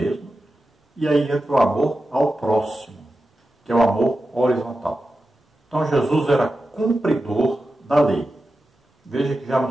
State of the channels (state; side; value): normal; both; correlation 0.92